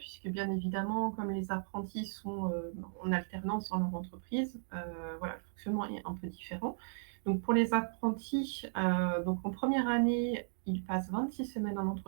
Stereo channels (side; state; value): left; silent; digital silence